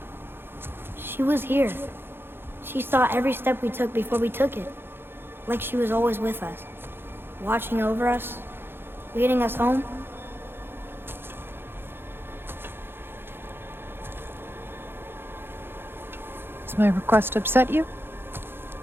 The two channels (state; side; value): late; left; 0.10 ms